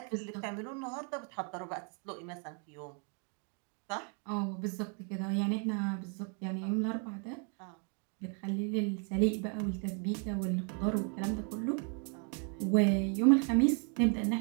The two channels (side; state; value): left; quieter; 39.3 dB